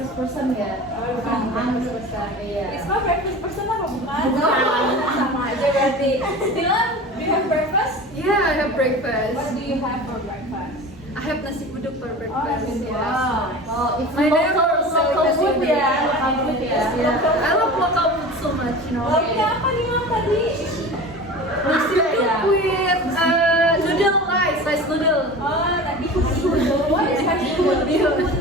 person ya. Oh, bukan breakfast person. Iya. Risma breakfast person apa bukan? Bukan. Sama aja berarti. Dylan, do you have breakfast? Yeah, I have breakfast. What do you have for breakfast? I have nasi uduk for Oh, breakfast. nasi uduk. Yes. Oh, it's My local neighbor sells food nasi uduk. ya. Local food ya. Yeah, I love local food so much, you know. Lauknya apa nih Mam tadi? Nasi uduk with noodle rice noodle. Oh, tadi bihun. What is bihun? Bihun.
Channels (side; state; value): both; normal; correlation 0.35